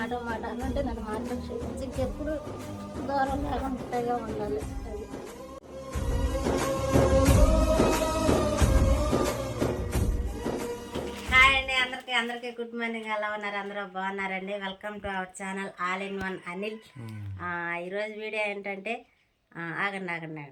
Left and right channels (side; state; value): both; identical; correlation 1.00